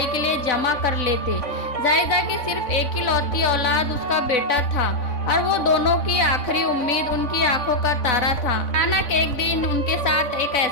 के लिए जमा कर लेते। जाहिदा की सिर्फ एक ही लौती औलाद उसका बेटा था और वो दोनों की आखिरी उम्मीद, उनकी आंखों का तारा था। अचानक एक दिन उनके साथ एक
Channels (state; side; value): late; right; 3.5 ms